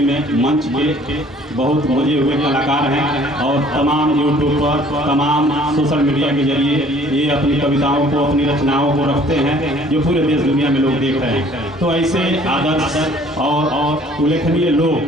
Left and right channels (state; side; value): normal; both; correlation 0.55